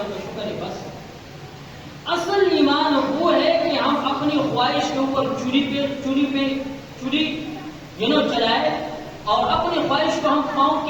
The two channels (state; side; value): identical; both; correlation 1.00